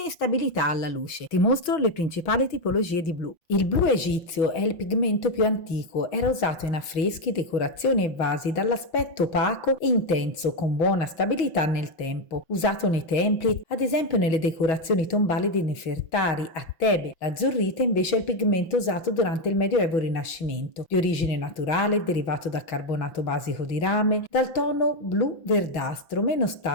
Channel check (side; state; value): right; late; 5.8 ms